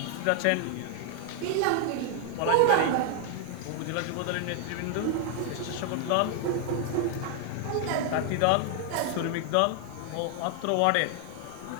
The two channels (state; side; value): different; both; correlation 0.00